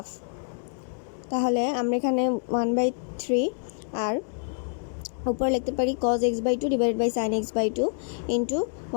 তাহলে আমরা এখানে 1/3 আর উপরে লিখতে পারি cos x by 2 divided by sin x by 2 into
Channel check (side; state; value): right; silent; digital silence